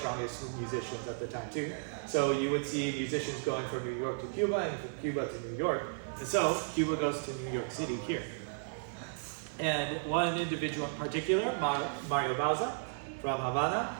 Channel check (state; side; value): silent; left; 55 dB below the other